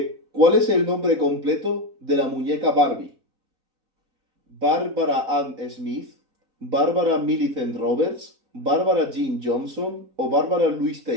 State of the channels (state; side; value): late; left; 4.1 ms